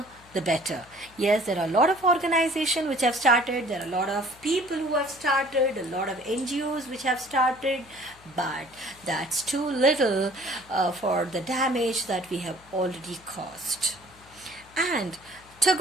the better. Yes, there are a lot of organizations which have started, there are a lot of people who have started, a lot of NGOs which have started, but that's too little for the damage that we have already caused. And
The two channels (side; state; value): left; noise; hum, 25 dB below the sound